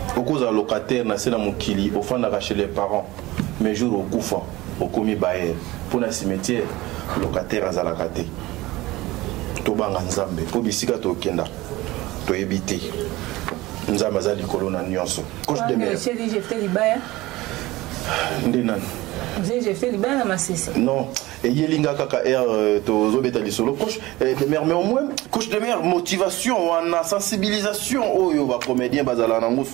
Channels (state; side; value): quieter; left; 19.2 dB